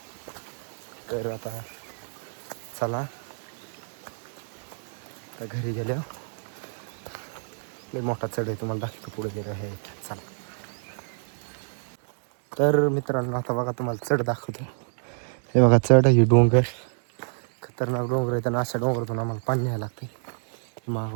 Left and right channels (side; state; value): left; silent; digital silence